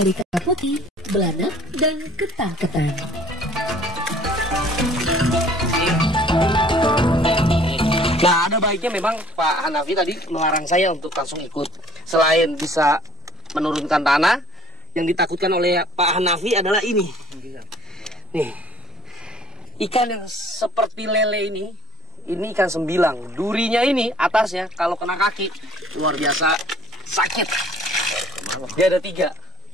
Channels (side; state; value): both; normal; correlation 0.53